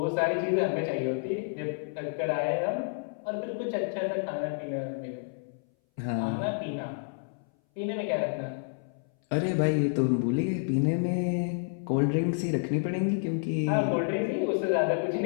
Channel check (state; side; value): silent; right; 58 dB below the other